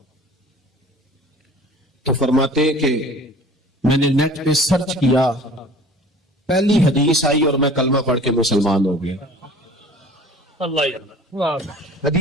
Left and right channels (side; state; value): both; normal; correlation 0.46